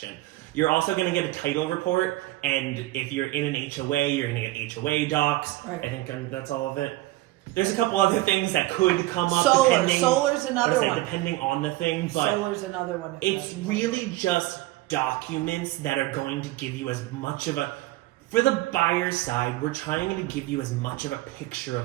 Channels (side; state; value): left; quieter; 18.0 dB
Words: You're also going to get a title report. And if you're in an HOA, you're going to get HOA docs. Right. I think that's all of it. There's a couple other things that could come up. Solar's another one. Depending on the thing. But solar's another one. It's really just documents that are going to give you as much of a... For the buyer's side, we're trying to give you as much of a picture